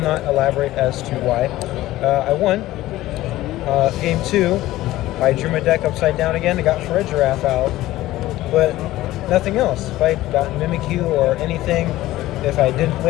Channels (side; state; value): right; quieter; 16.1 dB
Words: elaborate as to why. I won. Game 2, I drew my deck upside down again. I got for a Giraffe out, but nothing else. If I got Mimikyu or anything, if I didn't